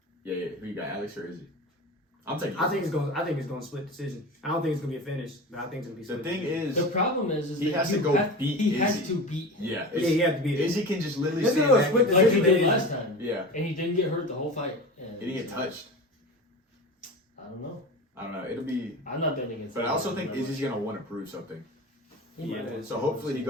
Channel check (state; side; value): normal; both; correlation 0.31